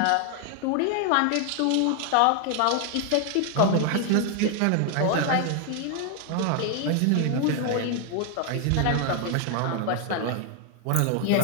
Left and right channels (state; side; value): different; both; correlation 0.01